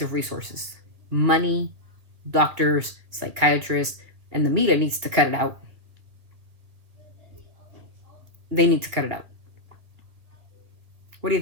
of resources, money, doctors, psychiatrists, and the media needs to cut it out. They need to cut it out. What do you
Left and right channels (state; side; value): late; left; 2.3 ms